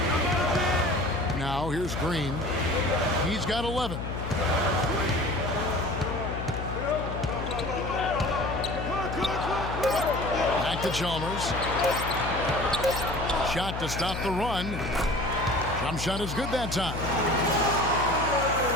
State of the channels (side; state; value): left; noise; hum, 6 dB below the sound